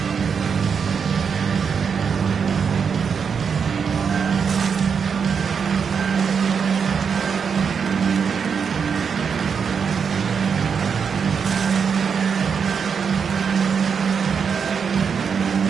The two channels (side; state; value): left; quieter; 6.4 dB